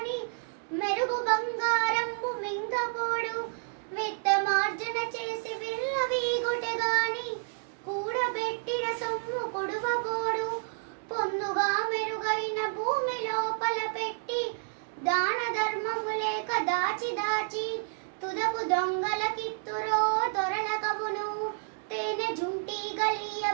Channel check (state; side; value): silent; left; 58 dB below the other